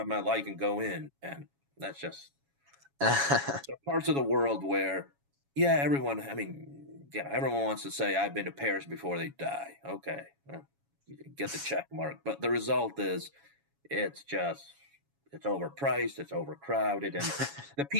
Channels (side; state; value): left; late; 7.2 ms